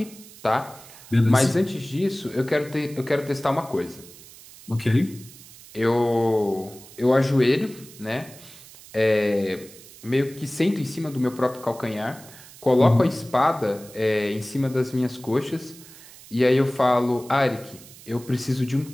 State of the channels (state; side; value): noise; right; hiss, 20 dB below the sound